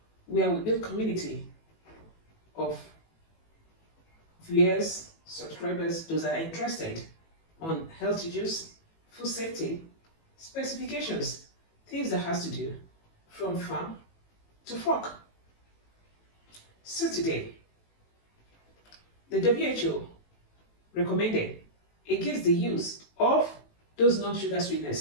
where we build community of viewers, subscribers, those that are interested on health issues, food safety, specifications, things that has to do from farm to fork. So today, the WHO recommended against the use of those non-sugar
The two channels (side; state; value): right; late; 18 ms